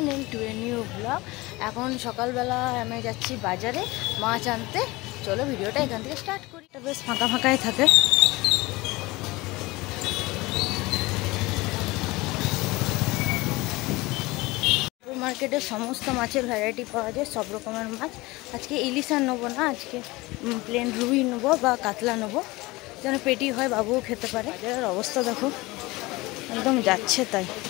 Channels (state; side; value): quieter; right; 21.6 dB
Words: to a new blog. এখন সকালবেলা আমি যাচ্ছি বাজারে মাছ আনতে। চলো ভিডিওটা এখান থেকে স্টার্ট করি। এটা বেশ ফাঁকা ফাঁকাই থাকে। মার্কেটে সমস্ত মাছের ভ্যারাইটি পাওয়া যায়, সব রকমের মাছ। আজকে ইলিশ আর নেবো না, আজকে প্লেন রুই নেবো বা কাতলা নেবো, যেন পেটি হয়, বাবুও খেতে পারে। বাজারের অবস্থা দেখো, একদম যাচ্ছে তাই।